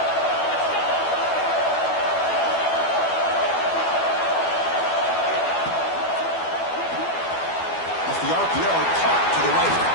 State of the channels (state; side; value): late; right; 12 ms